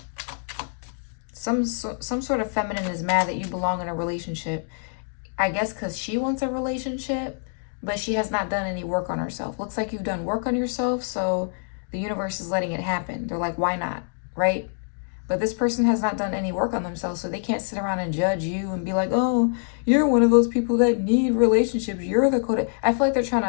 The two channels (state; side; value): silent; right; digital silence